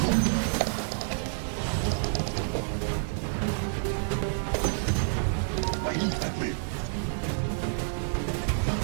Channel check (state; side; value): silent; left; digital silence